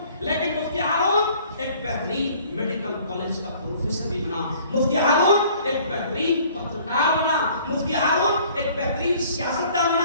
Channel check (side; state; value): both; inverted; correlation -0.55